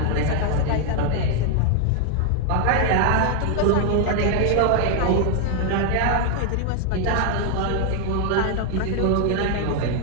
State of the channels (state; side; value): different; both; correlation 0.00